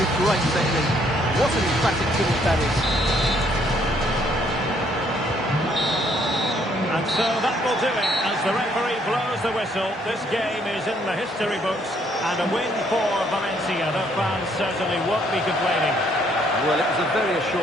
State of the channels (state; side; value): normal; both; correlation 0.67